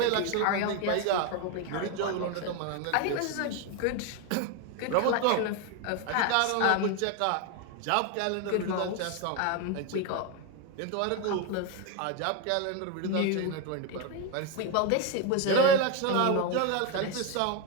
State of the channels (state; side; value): different; both; correlation 0.02